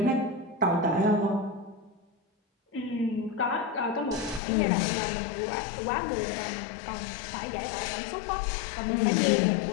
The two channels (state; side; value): drops out; right; at 4.4 s